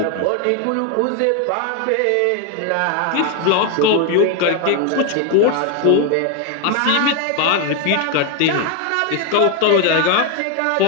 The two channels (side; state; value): both; different; correlation 0.01